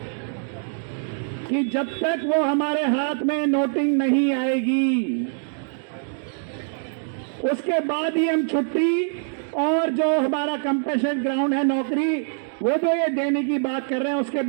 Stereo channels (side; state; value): left; silent; digital silence